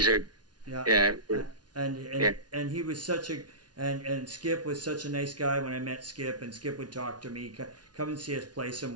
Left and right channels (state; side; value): late; left; 0.69 ms